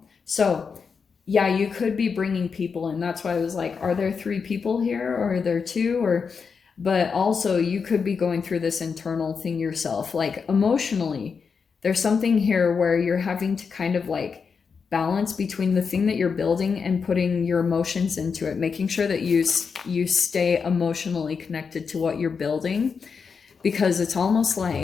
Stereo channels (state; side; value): quieter; right; 5.7 dB